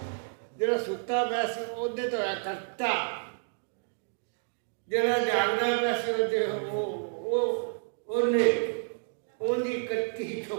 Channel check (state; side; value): silent; left; 58 dB below the other